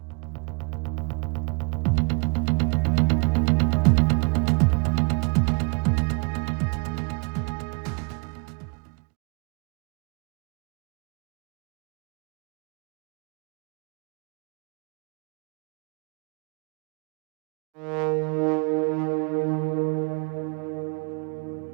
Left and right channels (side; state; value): left; quieter; 34.1 dB